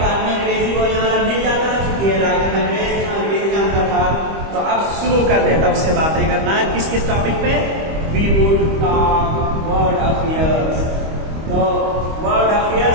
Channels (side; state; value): left; late; 25 ms